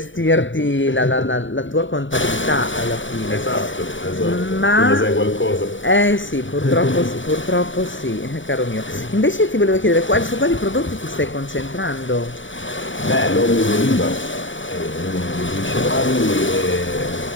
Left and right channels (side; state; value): right; late; 0.56 ms